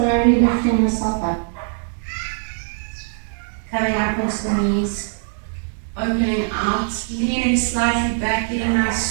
lifting yourself up, coming up onto the knees, opening out, leaning slightly back, getting a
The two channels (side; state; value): left; silent; digital silence